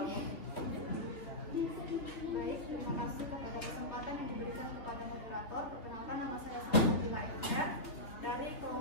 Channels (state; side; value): late; right; 3.5 ms